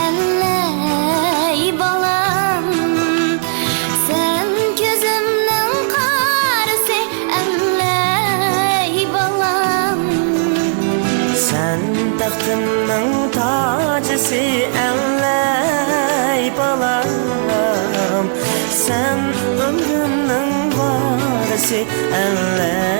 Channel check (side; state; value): left; silent; 69 dB below the other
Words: ەللەي balam sen gözümnün qarısı ەللەي balam sen taxtımның tacısı ەللەي balam sen ömrümның varısı